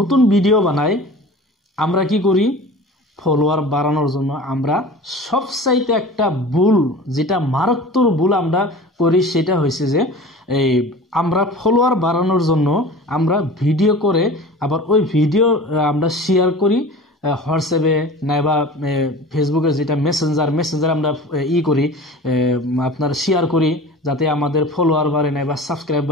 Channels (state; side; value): normal; both; correlation 0.39